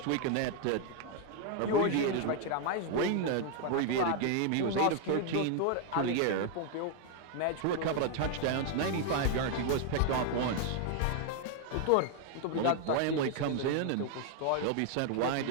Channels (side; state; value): both; different; correlation 0.01